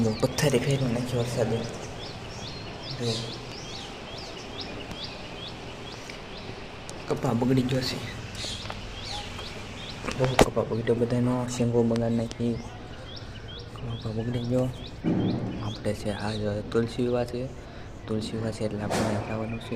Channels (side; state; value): both; identical; correlation 1.00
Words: પથ્થરે ફેરવી નાખ્યો વરસાદે. જો કપા બગડી ગયો છે, બહુ કપા બગડ્યો, બધાનો શેંગો બગાડી નાખી, કપા બગડી ગયો. આપણે છે આ તુલસી વિવાહ છે, તુલસી વિવાહ છે એટલે આપણે જવાનું